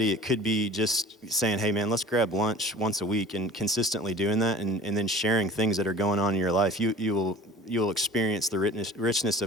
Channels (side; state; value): both; normal; correlation 0.43